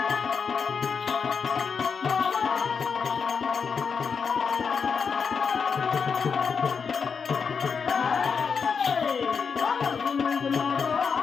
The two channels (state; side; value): quieter; right; 5.9 dB